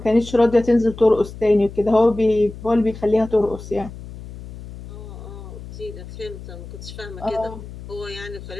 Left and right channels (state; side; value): noise; left; hum, 13 dB below the sound